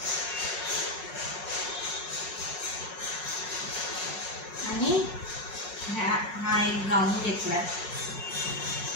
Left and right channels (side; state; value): right; late; 5.5 ms